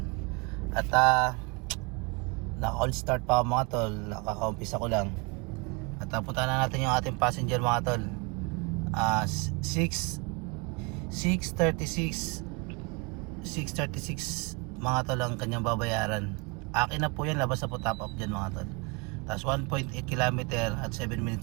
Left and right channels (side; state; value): left; quieter; 29.3 dB